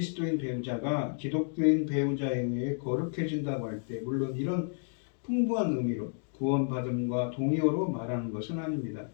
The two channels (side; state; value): right; silent; digital silence